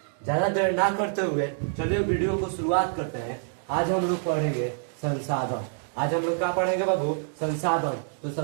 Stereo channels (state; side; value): silent; left; digital silence